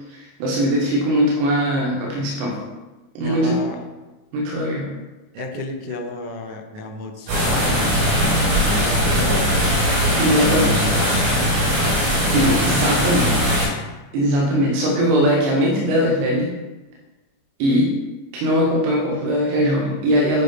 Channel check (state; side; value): late; left; 29 ms